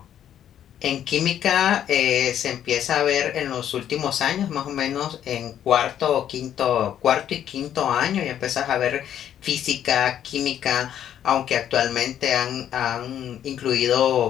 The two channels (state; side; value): quieter; right; 10.3 dB